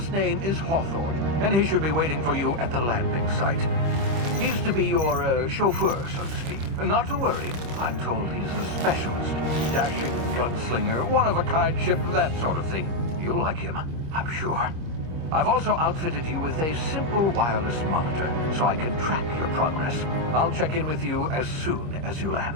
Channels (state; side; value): late; left; 25 ms